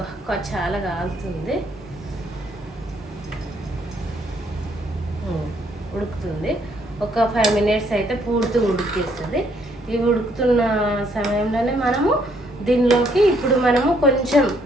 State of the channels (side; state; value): both; normal; correlation 0.69